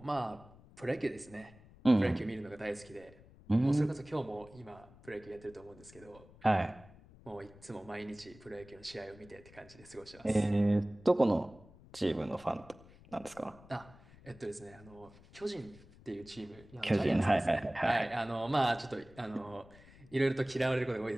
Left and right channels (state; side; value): noise; left; rumble, 22 dB below the sound